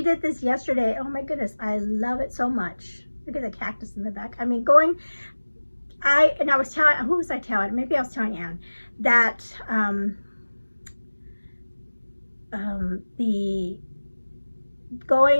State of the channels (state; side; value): inverted; both; correlation -1.00